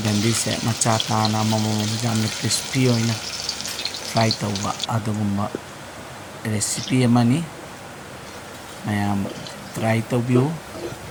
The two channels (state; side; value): identical; both; correlation 1.00